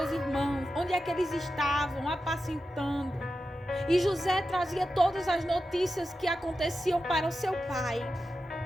irmãos, onde é que eles estavam apacentando? E José trazia todas as notícias que aconteciam para o seu pai.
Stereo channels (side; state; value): both; normal; correlation 0.91